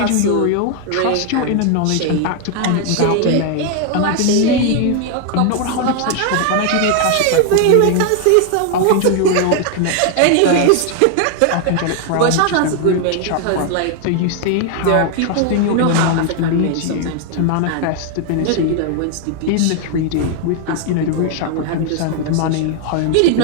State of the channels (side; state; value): both; different; correlation 0.00